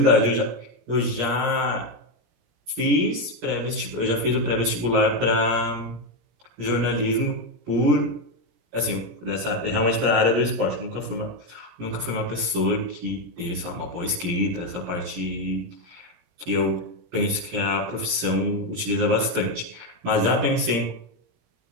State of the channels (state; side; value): late; left; 17 ms